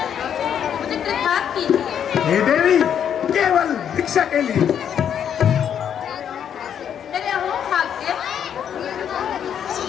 मुझे कृतार्थ कीजिए। हे देवी, केवल भिक्षा के लिए। मेरे अहो भाग्य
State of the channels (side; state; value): right; quieter; 8.8 dB